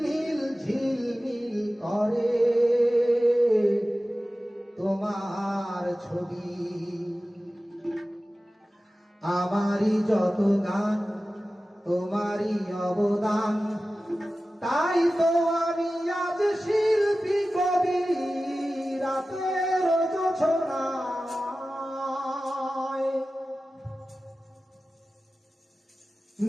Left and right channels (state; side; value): normal; both; correlation 0.95